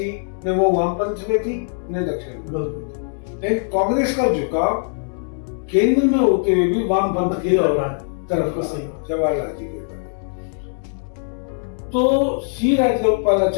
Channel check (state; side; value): silent; right; 65 dB below the other